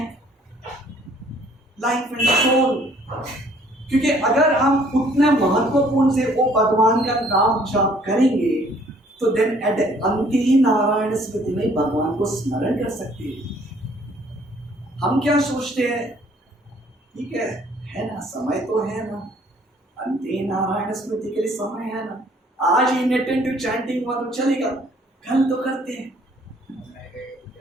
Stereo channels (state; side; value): normal; both; correlation 0.60